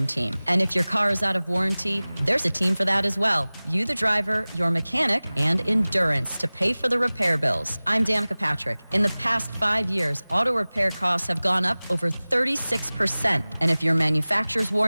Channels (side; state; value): both; inverted; correlation -0.99